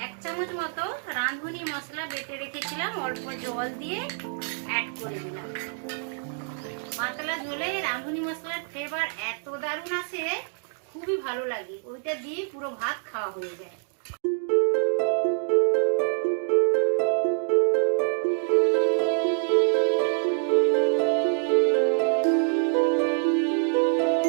1 চামচ মতো রাঁধুনি মশলা বেটে রেখেছিলাম, অল্প জল দিয়ে অ্যাড করে দিলাম। পাতলা ঝোলে রাঁধুনি মশলার ফ্লেভার এত দারুণ আসে, খুবই ভালো লাগে। ওইটা দিয়ে পুরো ভাত খাওয়া হয়ে যায়।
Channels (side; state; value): left; silent; 61 dB below the other